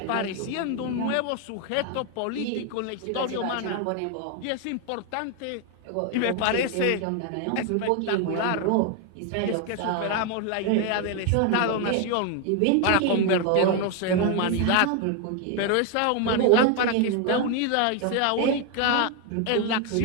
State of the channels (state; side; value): different; both; correlation 0.01